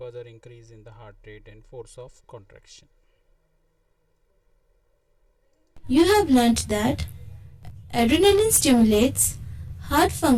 increase in the heart rate and force of contraction. You have learnt that adrenaline stimulates heart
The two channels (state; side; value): identical; both; correlation 1.00